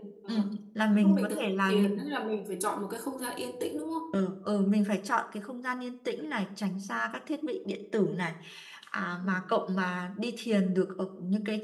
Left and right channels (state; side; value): identical; both; correlation 1.00